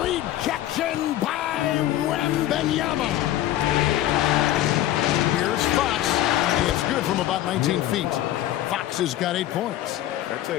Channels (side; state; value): right; quieter; 13.8 dB